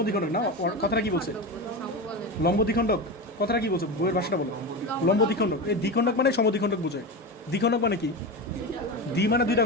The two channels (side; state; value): both; normal; correlation 0.21